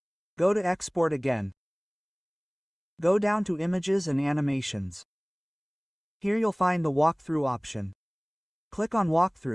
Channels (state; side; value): identical; both; correlation 1.00